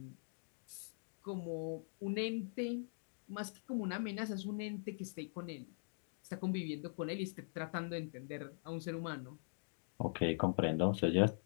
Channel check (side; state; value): right; silent; digital silence